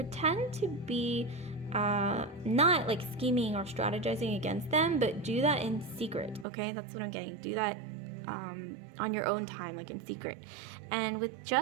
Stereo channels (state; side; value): drops out; left; at 6.5 s